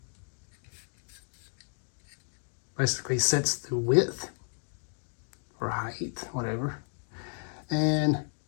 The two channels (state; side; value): silent; right; 56 dB below the other